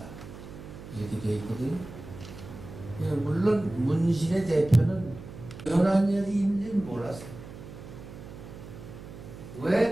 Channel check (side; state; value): right; noise; hum, 14 dB below the sound